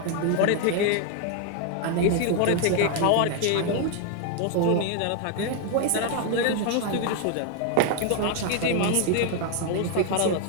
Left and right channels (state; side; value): different; both; correlation 0.01